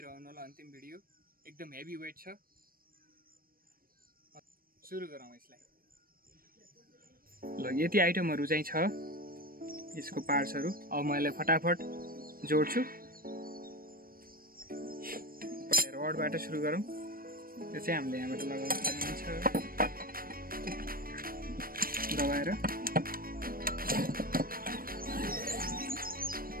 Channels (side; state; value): left; late; 0.42 ms